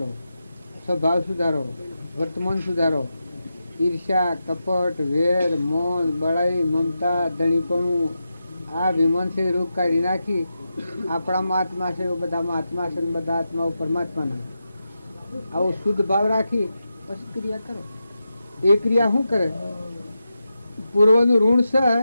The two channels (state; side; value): inverted; both; correlation -0.89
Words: સ્વભાવ સુધારો, વર્તમાન સુધારો. ઈર્ષ્યા, કપટ, વેર, મૌન, બળાઈ, મમતા, ધણીપણું આ વિમનથી રૂપ કાઢી નાખી આપણામાં આત્મા છે બધામાં આત્મા છે, બધા આત્માઓ પરમાત્માના. આવો શુદ્ધ ભાવ રાખી પછી ક્રિયા કરો. એ ક્રિયા શું કરે? પૂર્વનું ઋણ છે